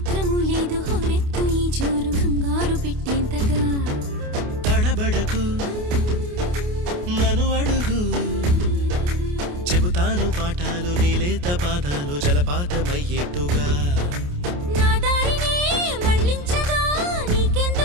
లేదు హోరెత్తు ఈ జోరు కంగారు పెట్టేంతగా తడబడకు నన్ను అడుగు చెబుతాను పాఠాలు నీలేత పాదాలు జలపాతమయ్యేట్టుగా నా దారినే మళ్ళించగా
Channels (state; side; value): late; left; 28 ms